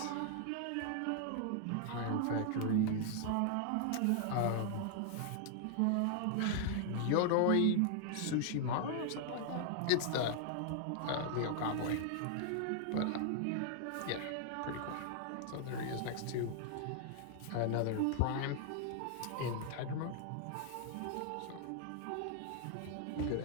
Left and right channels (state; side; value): different; both; correlation 0.00